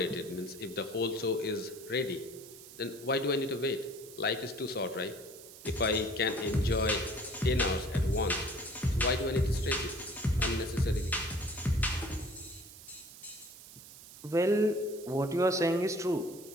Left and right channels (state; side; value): noise; right; hiss, 17 dB below the sound